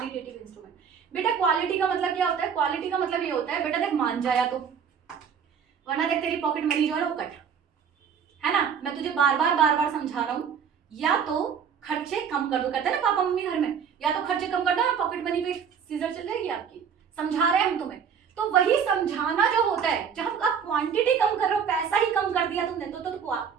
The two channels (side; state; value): left; quieter; 7.2 dB